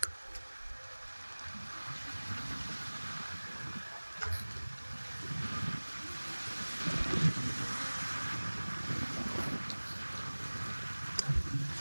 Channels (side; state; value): both; inverted; correlation -1.00